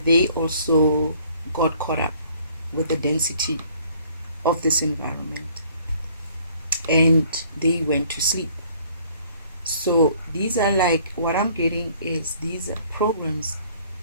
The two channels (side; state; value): both; inverted; correlation -0.58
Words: they also got caught up with the density of this environment and they went to sleep. So these are like, what I'm getting is these programs